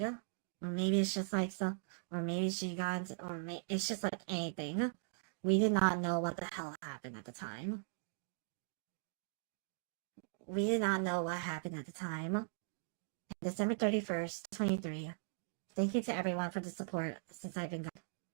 Or maybe it's just like so, or maybe she got into, it's just like anything. We did not know what the hell happened at the time. We did not know what happened at the time. December 31st, 23. Thank you to everyone for the support since I've been gone.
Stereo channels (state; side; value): silent; left; digital silence